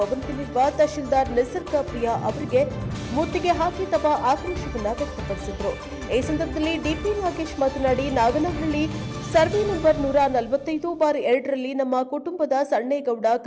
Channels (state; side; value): identical; both; correlation 1.00